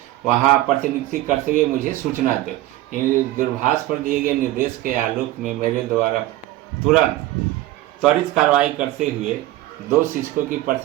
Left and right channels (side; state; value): left; quieter; 16.1 dB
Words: वहाँ प्रतिनियुक्ति करते हुए मुझे सूचना दो। दूरभाष पर दिए गए निर्देश के आलोक में मेरे द्वारा तुरंत त्वरित कार्रवाई करते हुए 2 शिक्षकों की